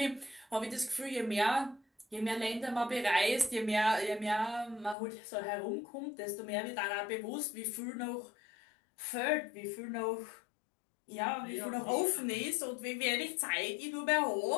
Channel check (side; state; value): right; drops out; at 5.0 s